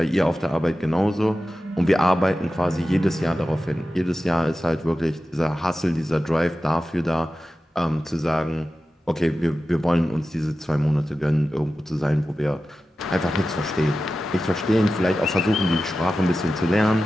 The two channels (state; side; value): normal; both; correlation 0.94